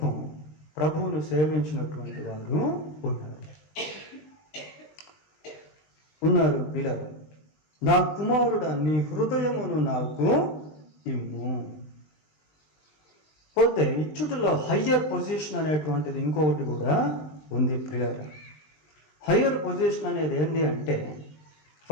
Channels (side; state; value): right; late; 20 ms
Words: ప్రభువును సేవించినటువంటి వారు ఉన్నారు. పిల్లలు, నా కుమారుడా నీ హృదయమును నాకు ఇమ్ము. పోతే ఇచ్చుటలో హయ్యర్ పొజిషన్ అనేటువంటిది ఇంకొకటి కూడా ఉంది ప్రియులారా. హయ్యర్ పొజిషన్ అనేది ఏంటి అంటే,